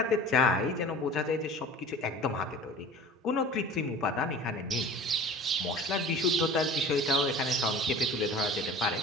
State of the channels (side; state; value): both; normal; correlation 0.41